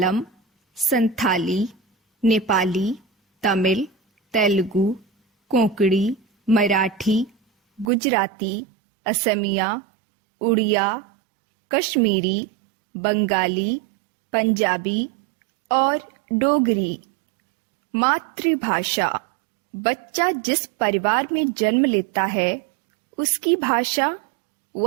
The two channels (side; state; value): left; drops out; at 7.9 s